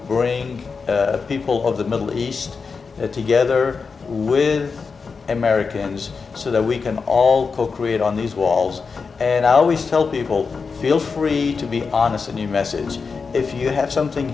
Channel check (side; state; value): right; quieter; 5.0 dB